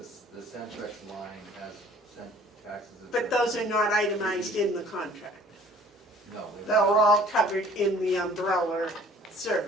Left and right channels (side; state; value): both; normal; correlation 0.53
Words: Centrex line has taxes and But surcharges. those are not itemized in the contract. No, They're all covered in the umbrella